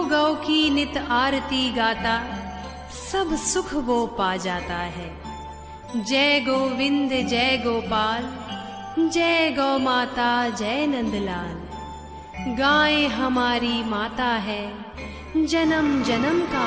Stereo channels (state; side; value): identical; both; correlation 1.00